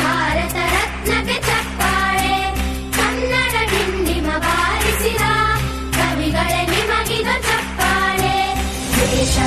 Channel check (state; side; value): identical; both; correlation 1.00